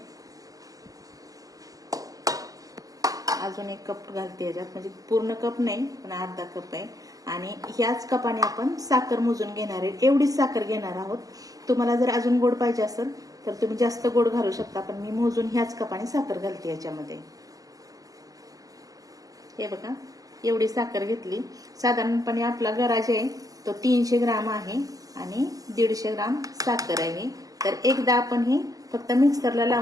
अजून एक कप घालते याच्यात, म्हणजे पूर्ण कप नाही पण अर्धा कप आहे. आणि ह्याच कपाने आपण साखर मोजून घेणार आहे, एवढीच साखर घेणार आहोत. तुम्हाला जर अजून गोड पाहिजे असेल तर तुम्ही जास्त गोड घालू शकता, पण मी मोजून ह्याच कपाने साखर घालते याच्यामध्ये. हे बघा, एवढी साखर घेतली. साधारणपणे आपला गराज आहे तो 300 ग्राम आहे आणि 150 ग्राम साखर आहे. तर एकदा आपण हे फक्त मिक्सरला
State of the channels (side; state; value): left; late; 0.17 ms